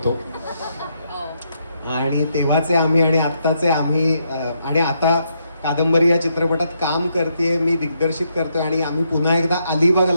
आणि तेव्हाचे आम्ही आणि आत्ताचे आम्ही, आणि आता कादंबरी या चित्रपटात काम करते, मी दिग्दर्शित करतोय आणि आम्ही पुन्हा एकदा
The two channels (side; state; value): both; inverted; correlation -0.77